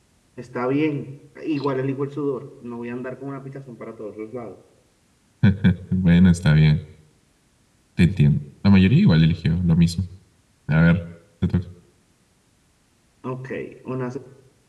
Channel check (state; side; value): identical; both; correlation 1.00